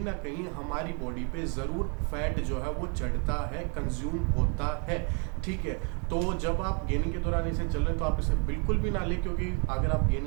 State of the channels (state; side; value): quieter; left; 37.0 dB